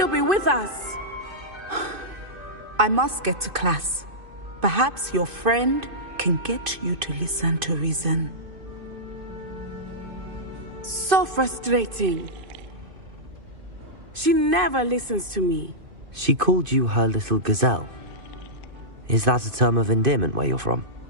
be with us. I must get to class. Perhaps your friend can get you to listen to reason. So frustrating. She never listens to me. She called you her little gazelle. Is that a term of endearment where you're from?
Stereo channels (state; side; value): late; left; 2.5 ms